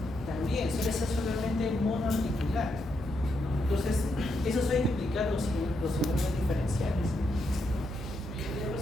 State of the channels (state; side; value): noise; left; hum, 14 dB below the sound